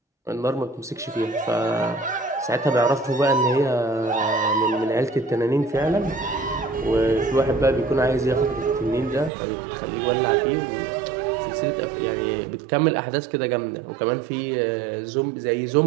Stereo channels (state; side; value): drops out; left; at 9.3 s